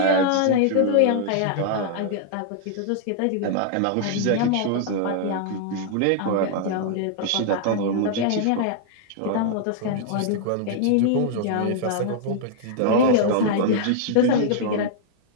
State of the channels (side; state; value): both; different; correlation -0.01